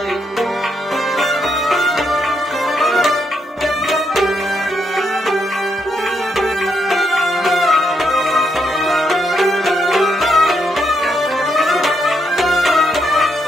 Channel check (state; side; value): normal; both; correlation 0.78